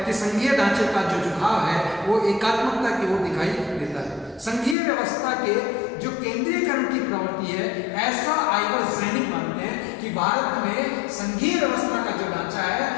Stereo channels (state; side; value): drops out; right; at 4.8 s